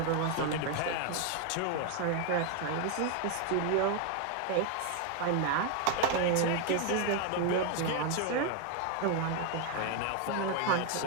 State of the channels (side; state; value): both; different; correlation 0.01